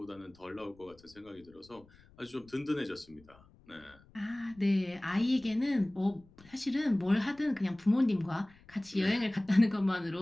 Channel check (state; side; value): noise; left; rumble, 27 dB below the sound